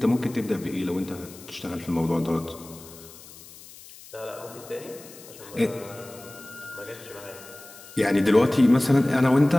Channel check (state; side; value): noise; left; hiss, 19 dB below the sound